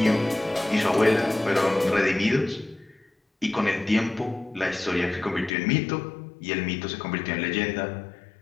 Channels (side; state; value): right; drops out; at 5.5 s